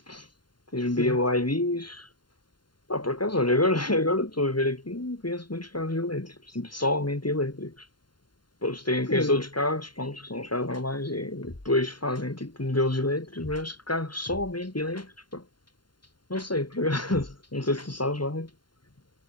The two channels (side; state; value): right; late; 0.72 ms